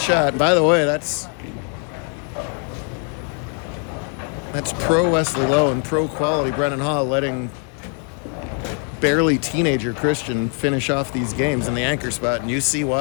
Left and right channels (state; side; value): quieter; right; 38.6 dB